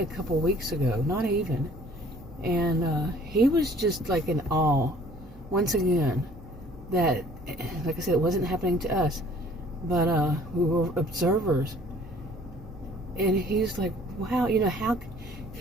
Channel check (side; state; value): right; noise; hum, 21 dB below the sound